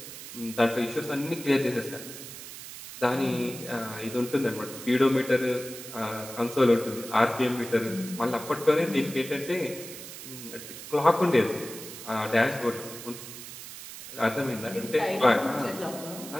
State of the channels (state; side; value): noise; right; hiss, 12 dB below the sound